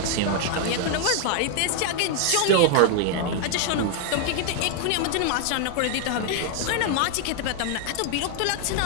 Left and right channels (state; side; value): different; both; correlation 0.00